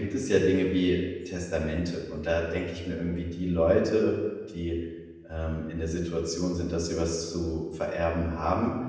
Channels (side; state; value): both; identical; correlation 1.00